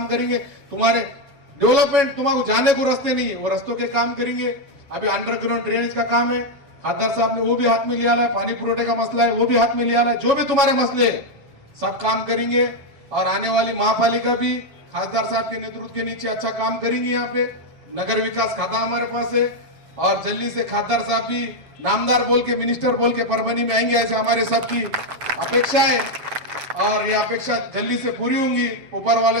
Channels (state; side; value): late; left; 7.1 ms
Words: करेंगे, तुम्हारे डेवलपमेंट तुम्हारे जाने को रास्ते नहीं है वो रास्तों के काम करेंगे। अभी अंडरग्राउंड ड्रेनेज का काम है, खासदार साहब ने वो भी हाथ में लिया है, पानी पुरोठे का मसला है वो भी हाथ में लिया है, जो भी तुम्हारे मसले सब काम करेंगे। और आने वाली महापालिका भी खासदार साहब के नेतृत्व के नीचे अच्छा काम करेंगे। यहाँ पे नगर विकास खाता हमारे पास है, और जल्दी से खासदार साहब भी नामदार बोल के, मिनिस्टर बोल के परभनी में आएंगे, ऐसे हमारे सबकी अपेक्षा है, और ये अपेक्षा जल्दी से पूरी होंगी। ऊपर